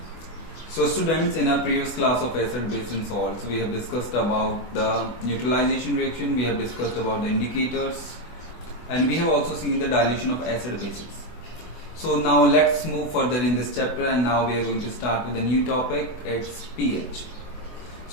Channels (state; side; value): late; right; 24 ms